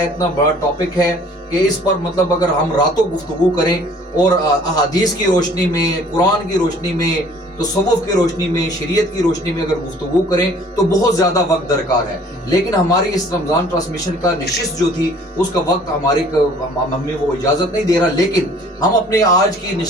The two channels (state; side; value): normal; both; correlation 0.54